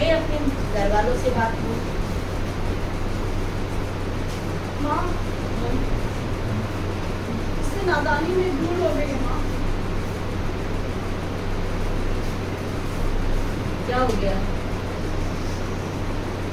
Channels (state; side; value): identical; both; correlation 1.00